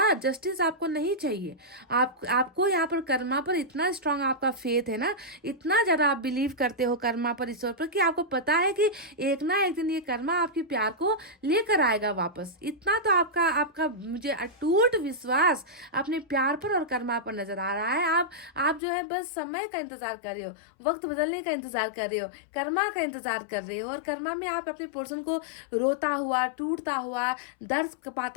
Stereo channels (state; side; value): drops out; right; at 18.8 s